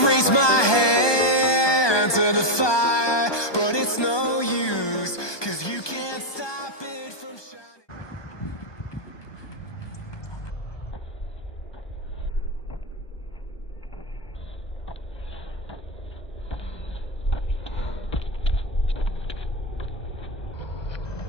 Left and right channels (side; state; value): right; late; 1.2 ms